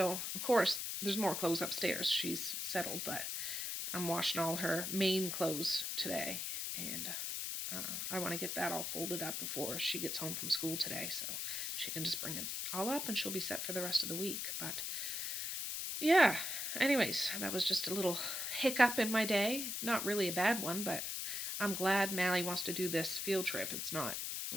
of course, there's more clothes upstairs. She's settled, but I'm washing all her main clothes today, and I want to get that all folded up before she gets home from school today, so she can just bring it all up and she'll be set for the rest of the week. But yeah, anyways, that was just a little hiccup in my day. Not really a bad one, but I'm glad Mally wants to do this field trip. It's not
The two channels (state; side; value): noise; left; hiss, 2 dB below the sound